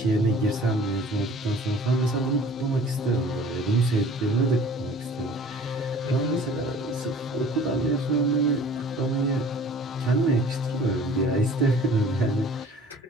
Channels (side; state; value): both; normal; correlation 0.48